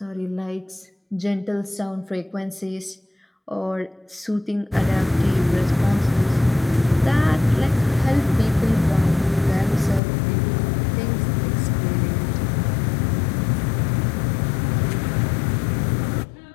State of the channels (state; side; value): drops out; right; at 10.0 s